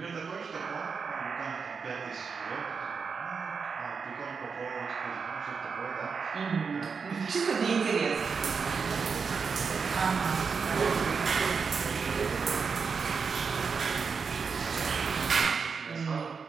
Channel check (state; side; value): quieter; left; 5.5 dB